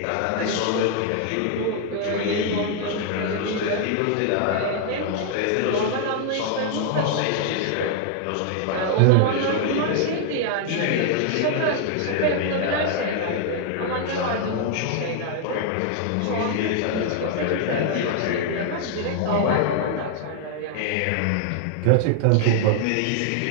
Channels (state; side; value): different; both; correlation 0.00